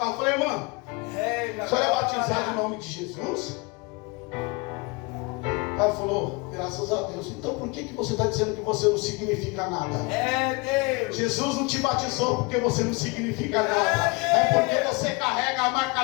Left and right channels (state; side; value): quieter; right; 27.3 dB